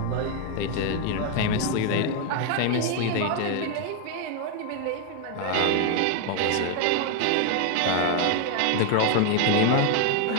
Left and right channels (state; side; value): different; both; correlation 0.01